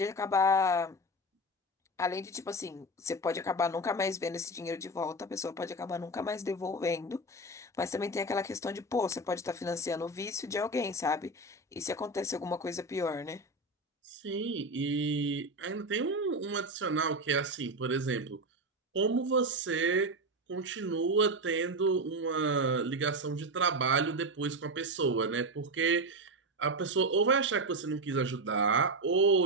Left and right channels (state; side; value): normal; both; correlation 0.17